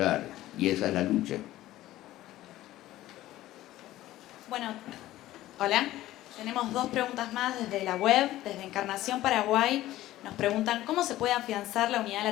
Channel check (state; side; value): quieter; right; 15.3 dB